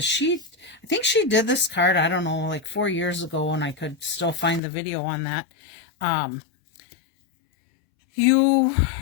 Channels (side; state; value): right; drops out; at 4.6 s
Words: I think she did this card, I don't know, like 4 years ago, and I could still find the video on that.